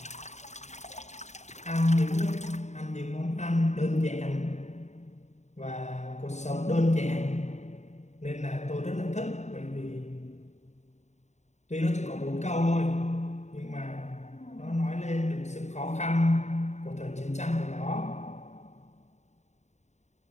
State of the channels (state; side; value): late; right; 0.33 ms